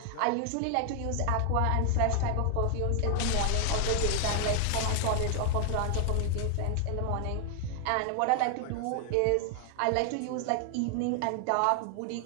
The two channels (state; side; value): different; both; correlation 0.00